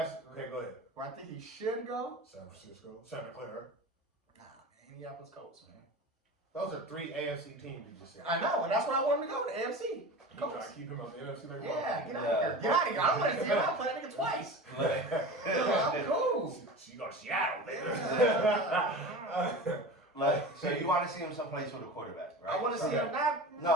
Go ahead. Where I think he should go. San Francisco, Santa Clara. Nah, man, Indianapolis Colts, man. Those are 3 AFC teams you just said. I know, and that's what I want him to go to, AFC. You try to keep him on the NFC like Yeah, get out of here. Get out of here. I don't want to see him. I'll play that nigga twice. I'm cool. You go to Seattle, So you want to see him someplace with a quarterback, right? I want to see him not.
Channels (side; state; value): both; normal; correlation 0.32